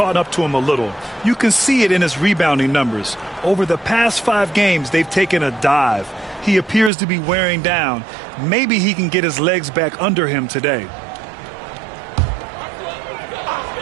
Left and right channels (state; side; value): drops out; left; at 6.9 s